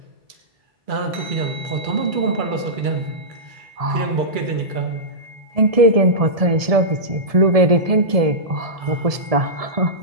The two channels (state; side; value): late; left; 1.7 ms